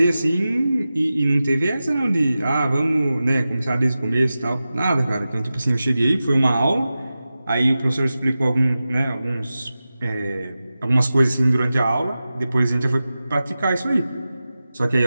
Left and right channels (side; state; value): both; inverted; correlation -0.94